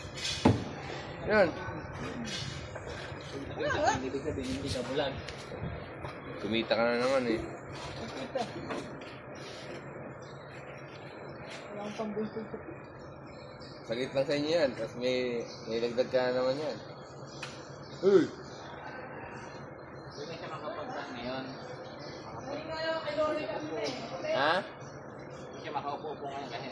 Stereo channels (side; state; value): both; identical; correlation 1.00